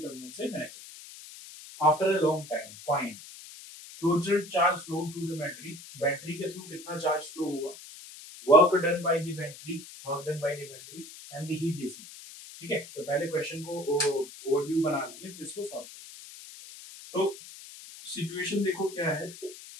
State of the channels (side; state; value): left; noise; hiss, 16 dB below the sound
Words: टर्मिनल से कनेक्ट करते हैं। After a long time find total charge flow through the battery, battery के through कितना चार्ज फ्लो हुआ, work done by the battery, and the heat dissipated, ठीक है। तो पहले क्वेश्चन को ओवरव्यू बना लीजिए, फिर इसको सॉल्व करें। तो सिचुएशन देखो क्या है,